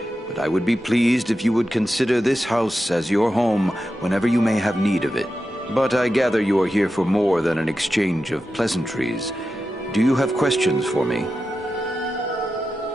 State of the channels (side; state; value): both; normal; correlation 0.91